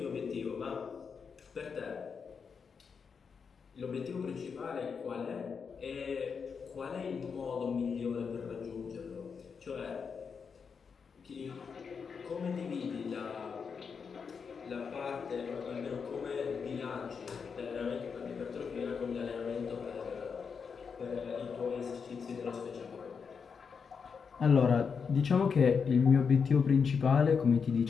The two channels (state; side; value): quieter; right; 6.0 dB